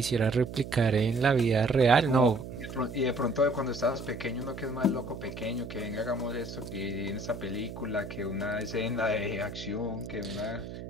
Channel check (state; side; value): noise; right; hum, 10 dB below the sound